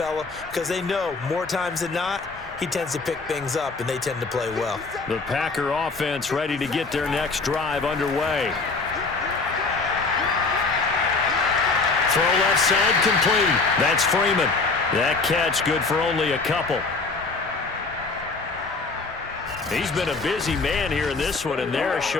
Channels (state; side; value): quieter; right; 4.0 dB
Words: Because they know more times than not, he tends to pick things up, and they tend to play well. The Packer offense ready to get their next drive underway. Throw left side complete. That's Freeman. That catch good for only a couple. He's been a busy man here in this one, and they're